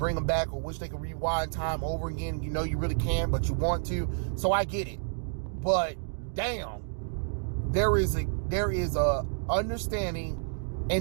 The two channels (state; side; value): silent; left; digital silence